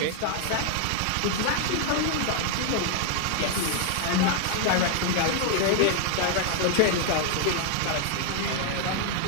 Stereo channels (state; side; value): different; both; correlation 0.00